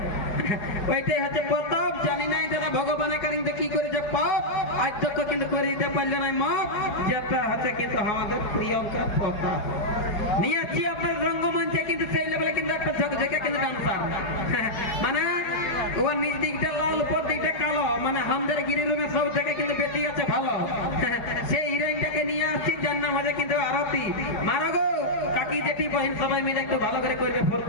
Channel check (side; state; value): right; late; 4.8 ms